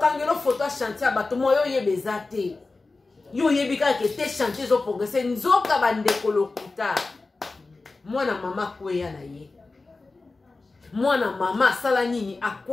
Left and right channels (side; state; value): right; quieter; 3.6 dB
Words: photo ya chantier bato moyo yebeza te yo yebika ke te chantier zo progresser nzoka bandeko lokuta mwana mama kweya na ye mwana mama sala nini